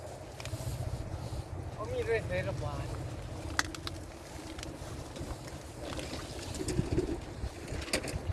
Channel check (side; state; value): both; identical; correlation 1.00